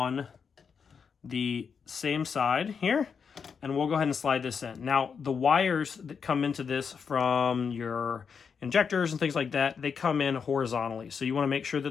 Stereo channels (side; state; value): right; quieter; 6.2 dB